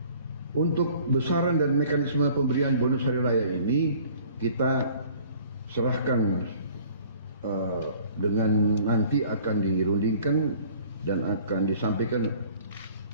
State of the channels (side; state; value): both; inverted; correlation -0.52